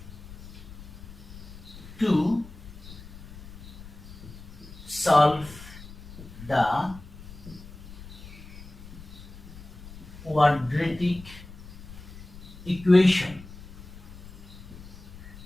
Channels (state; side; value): noise; left; rumble, 15 dB below the sound